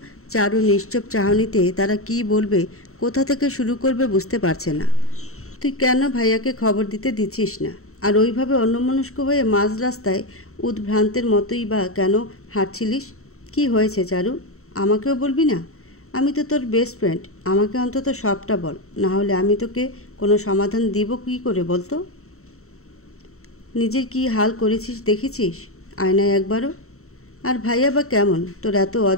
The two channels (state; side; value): late; right; 0.63 ms